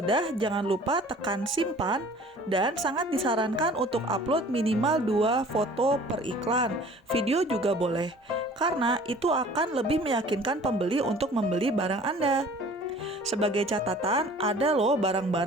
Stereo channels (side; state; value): both; normal; correlation 0.48